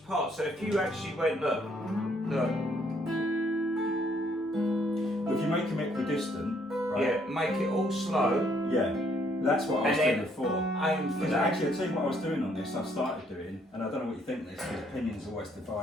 part, so if you actually went, look, if you make them equidistant, right? Yeah, make it all slow. Yeah. That's what I was doing before. Aim for that. Actually, I'll tell you what I was doing on this, I've started doing, and I don't know what you think of this, because opinions are always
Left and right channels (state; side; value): normal; both; correlation 0.68